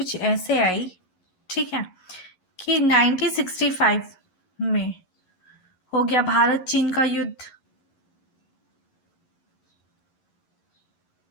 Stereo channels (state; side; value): late; right; 11 ms